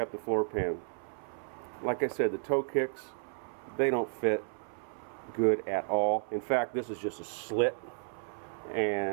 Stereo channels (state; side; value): silent; left; 56 dB below the other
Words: the floor pan. Like I said, the toe kicks, they don't fit good at all. In fact, this is just a slit,